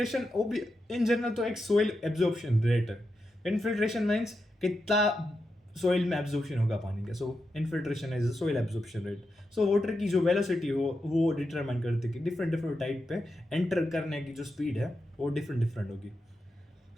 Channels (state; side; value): normal; both; correlation 0.87